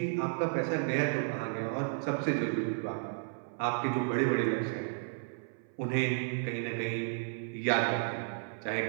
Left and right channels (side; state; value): left; silent; 56 dB below the other